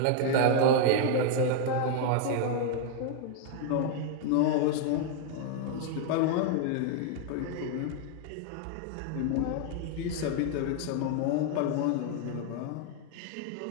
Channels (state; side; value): different; both; correlation 0.00